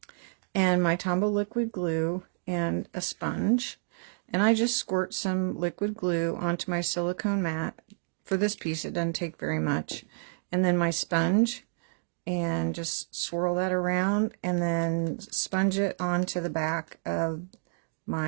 and my Tombow liquid glue and a sponge, and I just squirt some liquid glue onto my silicone mat. For this piece it doesn't take very much, and then my sponge, and just swirl that around and then sponge it onto the back of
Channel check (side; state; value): left; silent; digital silence